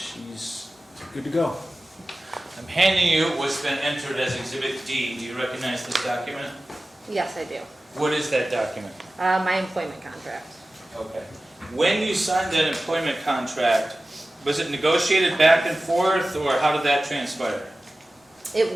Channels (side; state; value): both; normal; correlation 0.96